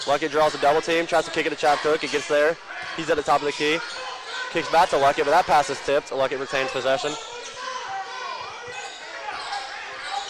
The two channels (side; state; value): both; identical; correlation 1.00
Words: Luckett draws a double team, tries to kick it to Chap Cook. It gets there. He's at the top of the key. Kicks back to Luckett, but that pass is tipped. Luckett retains possession.